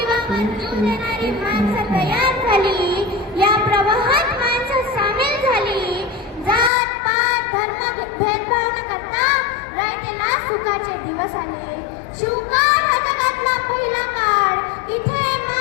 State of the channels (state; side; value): drops out; right; at 6.7 s